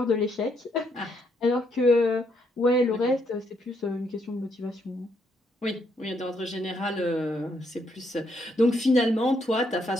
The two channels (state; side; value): normal; both; correlation 0.74